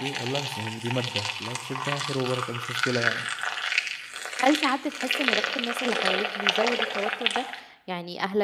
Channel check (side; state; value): both; identical; correlation 1.00